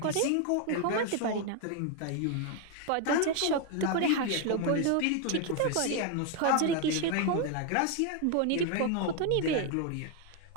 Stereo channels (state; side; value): different; both; correlation 0.01